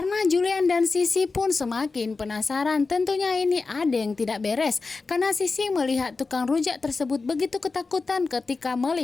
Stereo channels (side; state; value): right; quieter; 4.1 dB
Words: Julian dan Sisi pun semakin penasaran, tentunya ini ada yang tidak beres. Karena Sisi melihat tukang rujak tersebut begitu ketakutan ketika